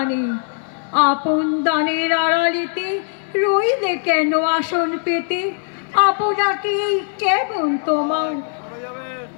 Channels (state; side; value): silent; right; 56 dB below the other